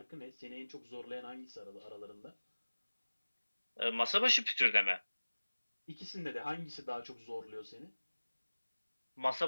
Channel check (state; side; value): inverted; both; correlation -1.00